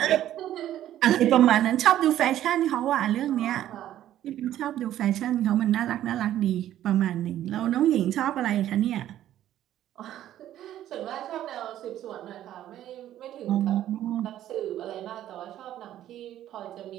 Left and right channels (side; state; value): left; quieter; 12.3 dB